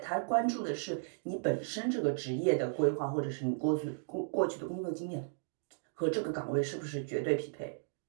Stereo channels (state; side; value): silent; left; digital silence